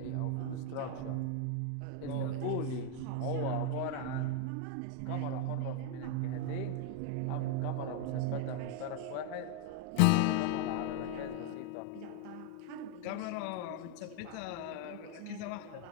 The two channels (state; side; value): different; both; correlation 0.01